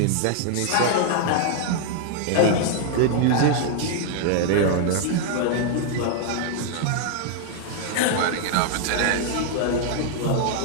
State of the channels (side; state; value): both; different; correlation 0.00